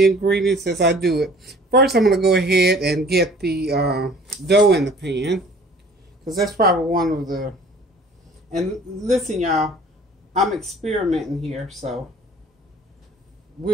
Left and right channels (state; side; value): normal; both; correlation 0.51